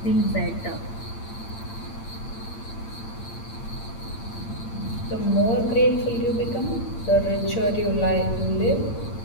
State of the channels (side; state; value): right; late; 8.8 ms